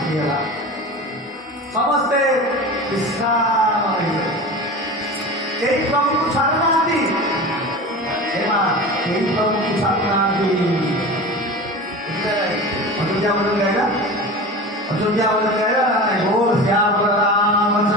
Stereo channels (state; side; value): normal; both; correlation 0.32